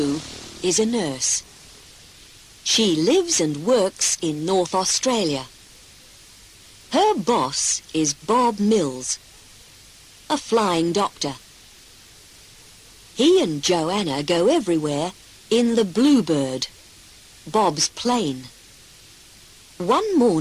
is a nurse. She lives and works in North Australia. Her boss is Bob Mills, a flying doctor. He and Joanna go everywhere in the Bluebird, Bob's plane. One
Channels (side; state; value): both; identical; correlation 1.00